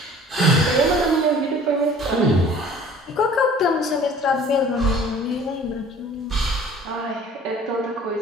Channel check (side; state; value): both; normal; correlation 0.49